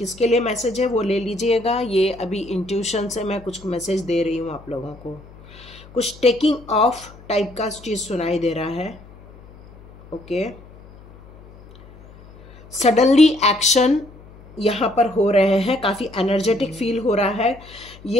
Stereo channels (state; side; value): noise; left; hum, 22 dB below the sound